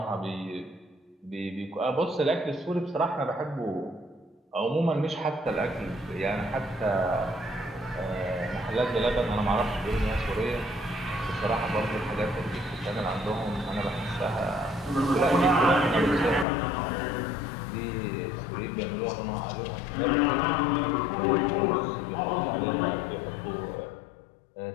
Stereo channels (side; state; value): right; drops out; at 16.4 s